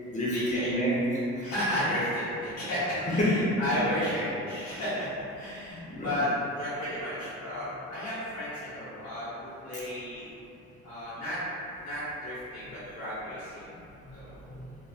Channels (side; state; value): both; normal; correlation 0.23